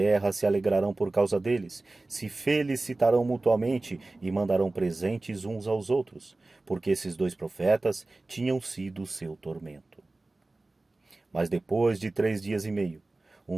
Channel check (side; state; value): left; quieter; 3.1 dB